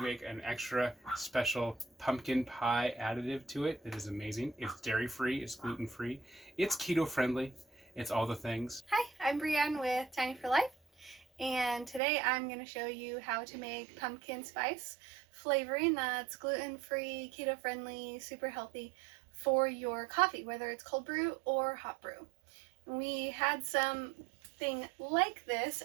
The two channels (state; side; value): drops out; left; at 12.0 s